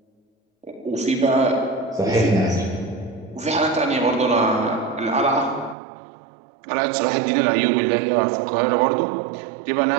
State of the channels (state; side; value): drops out; left; at 5.8 s